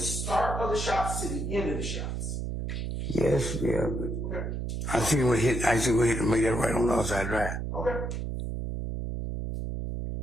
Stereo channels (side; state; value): right; noise; hum, 3 dB below the sound